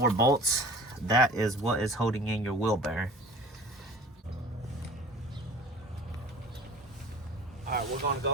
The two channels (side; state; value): both; normal; correlation 0.42